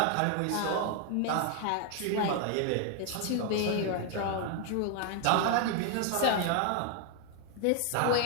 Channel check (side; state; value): both; different; correlation 0.00